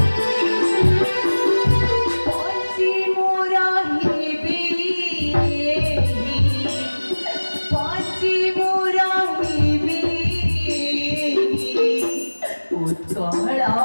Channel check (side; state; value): both; inverted; correlation -1.00